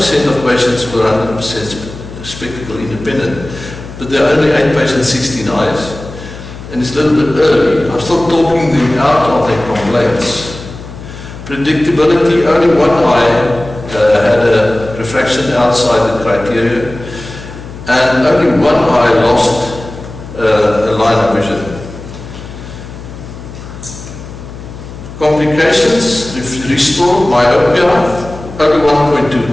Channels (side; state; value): left; noise; hum, 13 dB below the sound